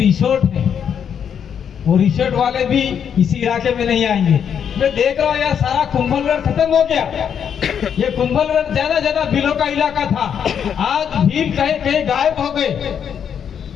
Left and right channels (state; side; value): quieter; right; 8.0 dB